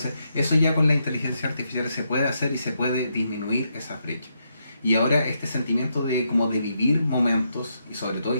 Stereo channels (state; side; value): inverted; both; correlation -0.81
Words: eso ya con la inteligencia artificial se puede hacer y se puede disminuir esa brecha. Y ahora este sentimiento de como de vivir momentos, y sobre todo